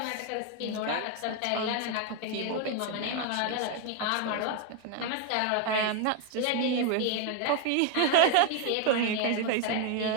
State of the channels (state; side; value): different; both; correlation 0.01